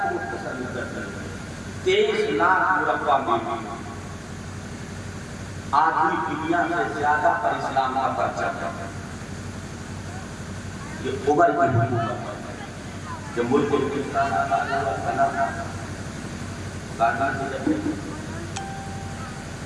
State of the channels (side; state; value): both; identical; correlation 1.00